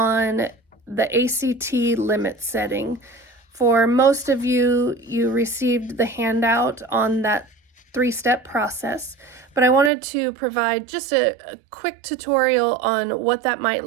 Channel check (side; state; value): left; drops out; at 9.9 s